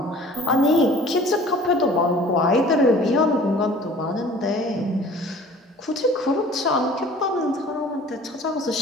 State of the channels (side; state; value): both; normal; correlation 0.48